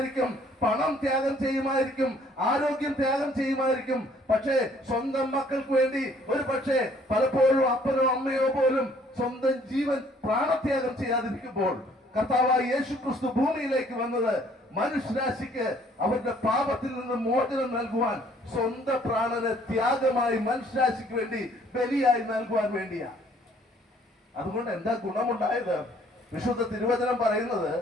പണം ത്യാഗം ചെയ്യുമായിരിക്കും, ആരോഗ്യം ത്യാഗം ചെയ്യുമായിരിക്കും. പക്ഷേ സ്വന്തം മക്കൾക്ക് വേണ്ടി ഒരു പക്ഷേ പലപ്പോഴും അപ്പനോ അമ്മയോ പോലും സ്വന്തം ജീവൻ പ്രാണത്യാഗം ചെയ്യാതിരിക്കുമ്പോൾ കർത്താവായ യേശു ക്രിസ്തു ഭൂമിയിലേക്ക് വന്നത് മനുഷ്യരാശിക്ക് അവരുടെ പാപത്തിൽ നിന്ന് മോചനം നൽകുവാൻ, സ്വന്തം പ്രാണനെ ത്യാഗമായി മനുഷ്യരാശിക്ക് വേണ്ടി ബലിയായി നൽകുവാൻ വേണ്ടിയാ. അതുകൊണ്ട് എന്താ ഗുണമുണ്ടായത്? വിശുദ്ധ തിരുവചനം പറയുന്നത്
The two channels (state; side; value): normal; both; correlation 0.60